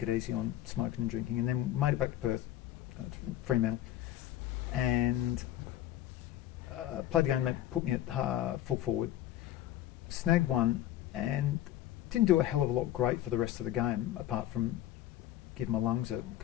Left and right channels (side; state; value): right; quieter; 13.1 dB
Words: it easy on smoking and drinking, and then made it back to Perth, to Fremantle, and played the game. They put me at full forward, snagged one, and didn't do a hell of a lot great for the rest of the game, apart from give my lungs a